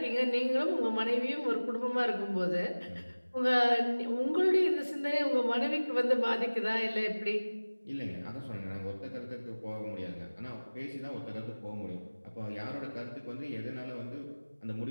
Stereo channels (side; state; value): both; inverted; correlation -1.00